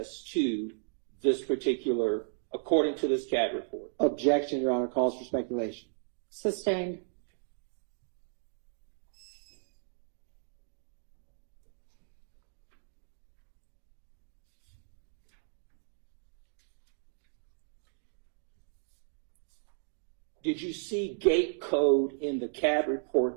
to this particular, according to this CAD report. Objection, Your Honor. Calls for speculation. Sustained. Okay. Did you see gate code in the CAD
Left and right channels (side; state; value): left; silent; digital silence